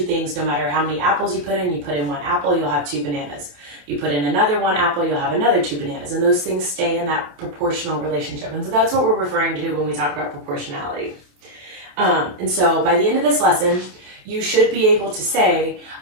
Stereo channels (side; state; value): left; late; 27 ms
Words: things, no matter how many apples you put in 1 apple, you'll have 2 bananas. You put in another 1 apple, you'll have another 2 bananas. And those things stay in that proportional relationship. And so that's what we're referring to when we talk about proportionality. And so by the end of this lesson, you should be able to say,